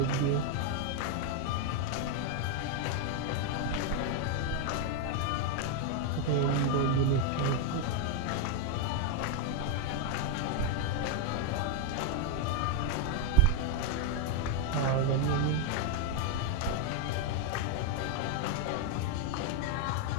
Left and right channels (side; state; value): both; different; correlation 0.01